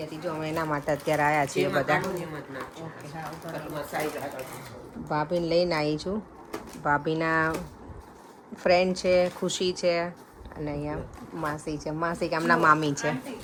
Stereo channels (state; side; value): identical; both; correlation 1.00